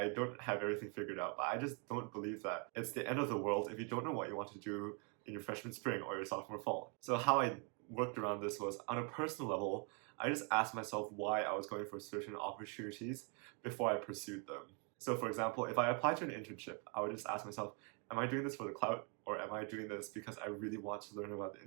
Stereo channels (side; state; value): left; quieter; 35.7 dB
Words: don't have everything figured out, but I just don't believe that it's the end of the world if you don't know what you want to do in your freshman spring or your sophomore fall. So how I worked around this was, on a personal level, I just asked myself why I was going for certain opportunities before I pursued them. So for example, if I applied to an internship, I would just ask myself, am I doing this for the clout, or am I doing this because I really want to learn about the